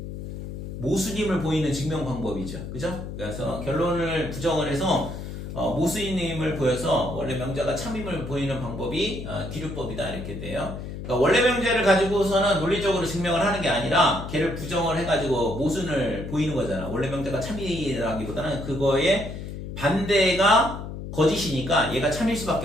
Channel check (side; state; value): left; noise; hum, 8 dB below the sound